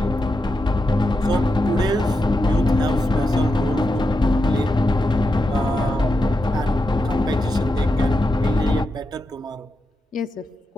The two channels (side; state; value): both; normal; correlation 0.87